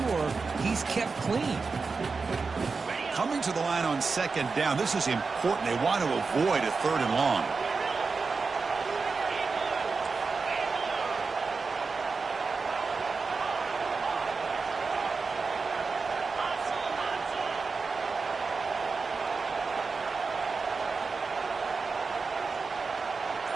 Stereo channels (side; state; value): left; quieter; 4.6 dB